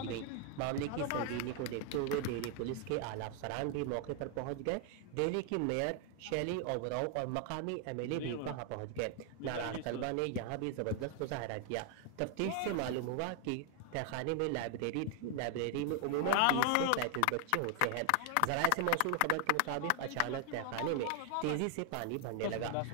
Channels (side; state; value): both; different; correlation 0.00